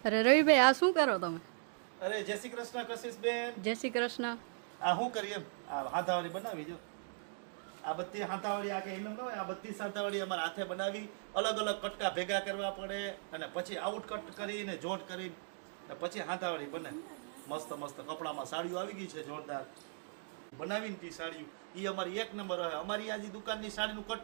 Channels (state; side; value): silent; left; digital silence